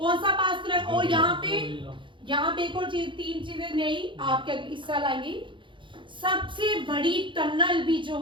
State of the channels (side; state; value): left; late; 0.24 ms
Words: सा पास कनेक्ट? और यहाँ पे एक और चीज, 3 चीजें नई आपके इस साल आएंगी। सबसे बड़ी टनल भी जो